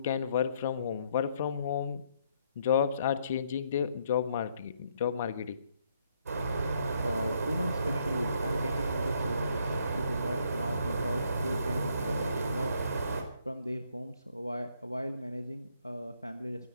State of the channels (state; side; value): inverted; both; correlation -0.70